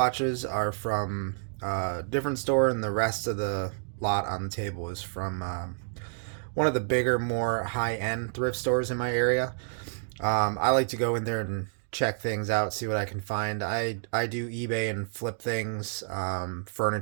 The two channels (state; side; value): silent; left; digital silence